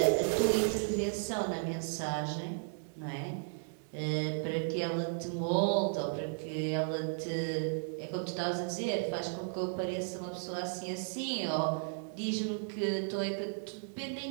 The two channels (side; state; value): left; silent; digital silence